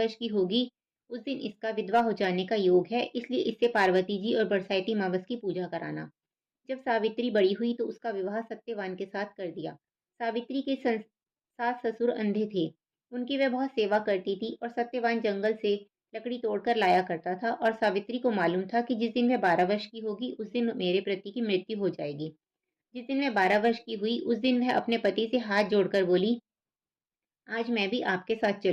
की होगी, उस दिन इसका विधवा हो जाने का योग है, इसलिए इससे पार्वती जी और बरसाती मावस की पूजा कराना। जब सावित्री बड़ी हुई तो उसका विवाह सत्यवान के साथ कर दिया। सावित्री के सास ससुर अंधे थे। उनकी वह बहुत सेवा करती थी और सत्यवान जंगल से लकड़ी तोड़कर लाया करता था और सावित्री को मालूम था कि जिस दिन वह 12 वर्ष की होगी उस दिन मेरे पति की मृत्यु हो जाएगी। जिस दिन वह 12 वर्ष की हुई उस दिन वह अपने पति से हाथ जोड़कर बोली, आज मैं भी आपके साथ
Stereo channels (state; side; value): identical; both; correlation 1.00